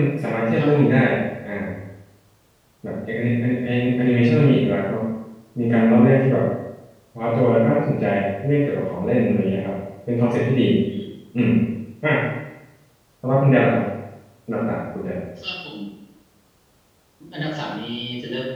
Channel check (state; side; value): identical; both; correlation 1.00